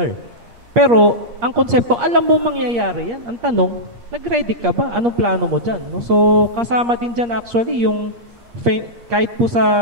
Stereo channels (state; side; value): late; left; 8.5 ms